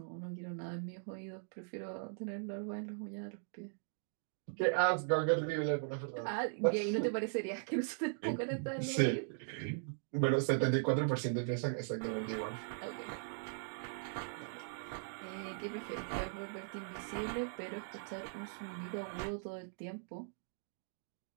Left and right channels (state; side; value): silent; left; digital silence